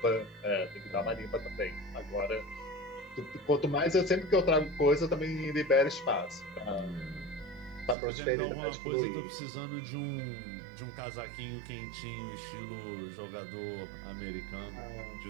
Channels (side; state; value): left; drops out; at 8.0 s